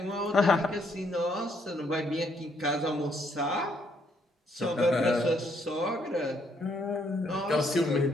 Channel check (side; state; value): both; normal; correlation 0.70